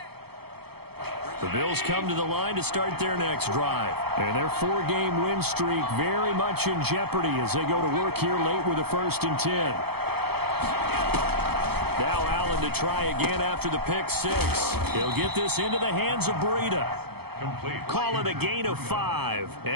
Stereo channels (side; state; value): left; late; 0.96 ms